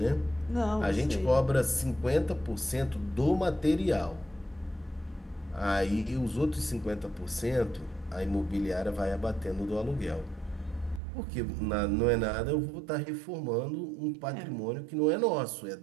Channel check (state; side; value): drops out; left; at 11.0 s